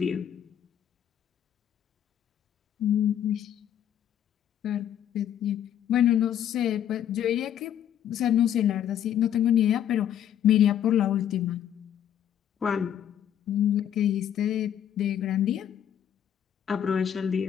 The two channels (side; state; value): right; quieter; 10.0 dB